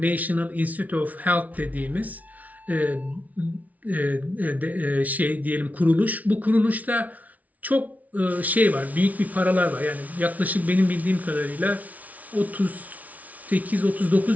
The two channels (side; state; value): left; late; 0.072 ms